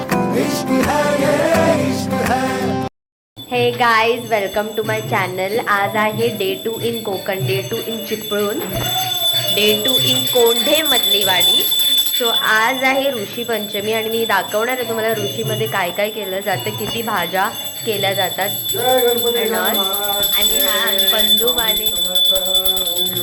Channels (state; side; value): identical; both; correlation 1.00